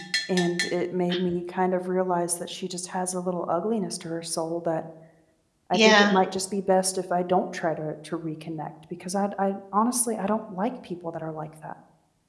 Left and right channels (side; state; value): both; identical; correlation 1.00